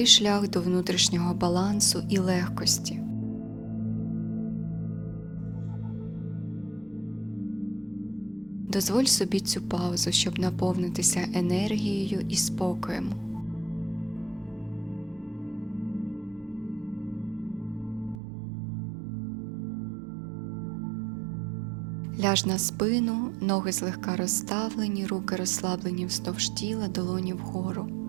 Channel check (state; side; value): drops out; left; at 18.2 s